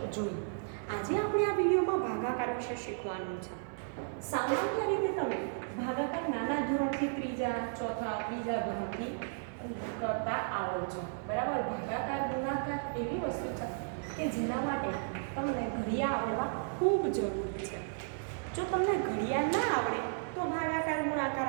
जोई। आजे आपणे आ विडियोमां भागाकार विषे शीखवानुं छे। सामान्य रीते तमे भागाकार नाना धोरणथी त्रीजा चौथा बीजा धोरणथी करता आवडो छो। बराबर भागाकार गुणाकार एवी वस्तु छे के जेना माटे तमने घड़िया आवडवा खूब जरूरी छे। जो तमने घड़िया ना आवडे तो भागाकार गुणाकार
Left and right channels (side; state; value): left; silent; digital silence